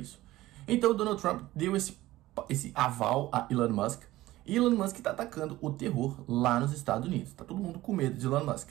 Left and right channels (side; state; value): left; quieter; 16.8 dB